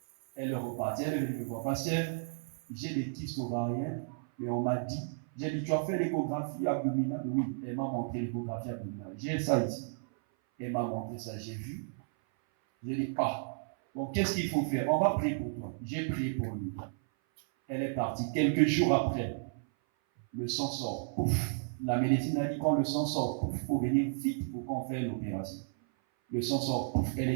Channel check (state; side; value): silent; left; 56 dB below the other